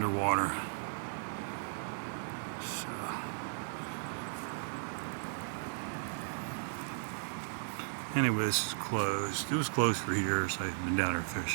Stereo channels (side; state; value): left; silent; 54 dB below the other